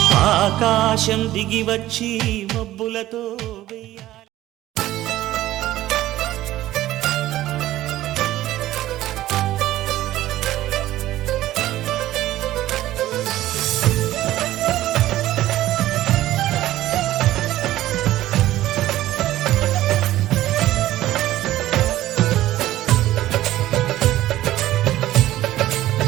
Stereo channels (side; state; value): left; quieter; 14.8 dB